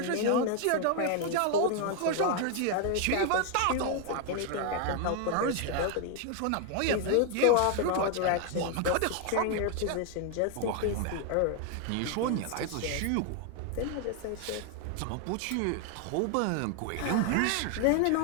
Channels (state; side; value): different; both; correlation 0.01